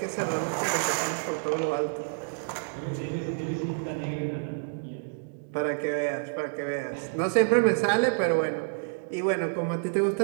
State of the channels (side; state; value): left; silent; digital silence